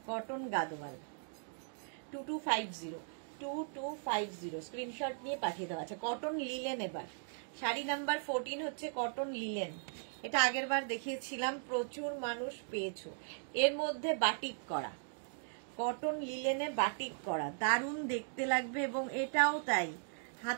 Cotton Gadwal 2250, screenshot নিয়ে পাঠিয়ে দেওয়া আছে। কটন লিলেন এবার শাড়ি নাম্বার 14 হচ্ছে কটন লিলেন। এটা আগের বার দেখিয়েছিলাম, প্রচুর মানুষ পেয়েছো। এর মধ্যে বাটিক করা, কটন লিলেনে বাটিক করা, দারুণ দেখতে লাগবে, এবং এটাও তাই,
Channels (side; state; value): left; silent; digital silence